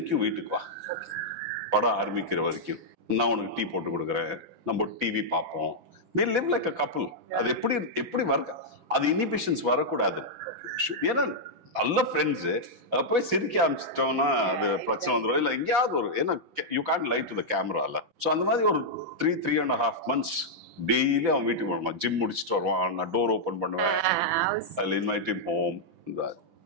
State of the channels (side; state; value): left; late; 5.9 ms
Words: வீட்டுக்கு வா, படம் ஆரம்பிக்கிற வரைக்கும் நான் உனக்கு டீ போட்டு கொடுக்குறேன், நம்ம டிவி பார்ப்போம், we live like a couple. அது எப்படி வர, அது இன்ஹிபிஷன்ஸ் வரக்கூடாது. ஏன்னா நல்ல ஃப்ரெண்ட்ஸு போய் சிரிக்க ஆரம்பிச்சிட்டோம்னா அது பிரச்சனை வந்துடும். இல்லை எங்கேயாவது ஒரு, ஏன்னா you can't lie to the கேமரால. ஸோ அந்த மாதிரி ஒரு 3.5 months டெய்லி அவன் வீட்டுக்கு வருவான். ஜிம் முடிச்சுட்டு வருவான், நான் டோர் ஓப்பன் பண்ணுவேன், அதில் இன்வைட் ஹிம் ஹோம்.